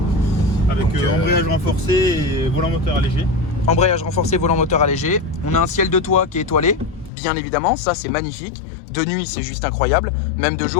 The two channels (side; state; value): right; drops out; at 7.1 s